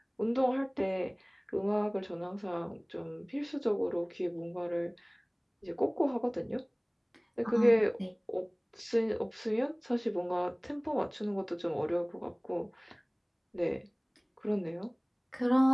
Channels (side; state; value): both; identical; correlation 1.00